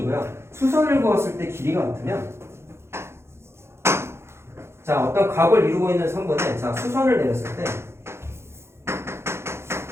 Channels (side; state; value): left; late; 0.12 ms